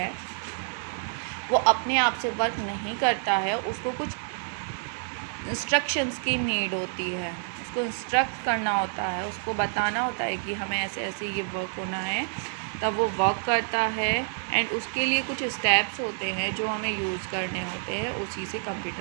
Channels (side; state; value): left; silent; 59 dB below the other